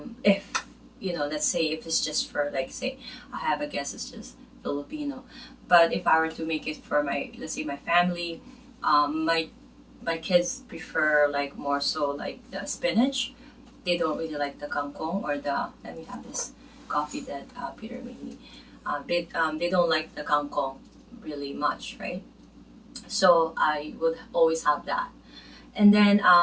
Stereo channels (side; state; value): both; identical; correlation 1.00